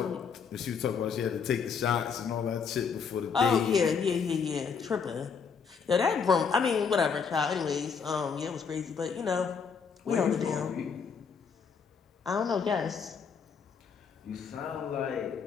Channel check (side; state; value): right; quieter; 6.1 dB